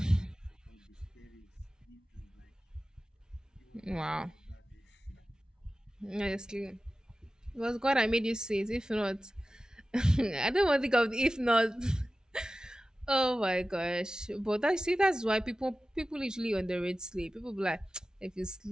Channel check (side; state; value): both; normal; correlation 0.95